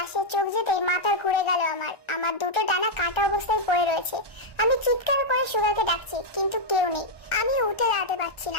চোখ যেতেই মাথা ঘুরে গেল। আমার দুটো ডানা কাটা অবস্থায় পড়ে রয়েছে। আমি চিৎকার করে সুগাকে ডাকছি, কিন্তু কেউ নেই। আমি উঠে দাঁড়াতে পারছি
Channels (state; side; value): late; right; 1.3 ms